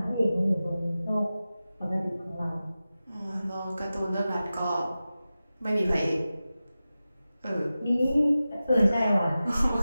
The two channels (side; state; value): both; inverted; correlation -0.95